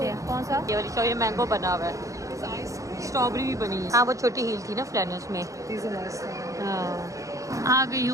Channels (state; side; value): late; left; 0.16 ms